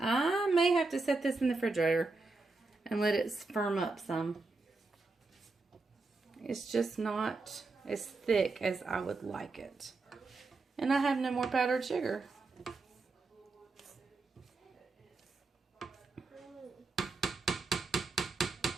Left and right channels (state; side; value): quieter; left; 3.7 dB